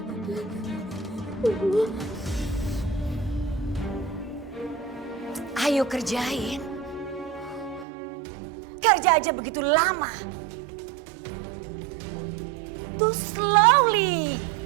Ayo kerjain. Kerja aja begitu lama. Too slowly.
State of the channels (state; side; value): drops out; left; at 7.9 s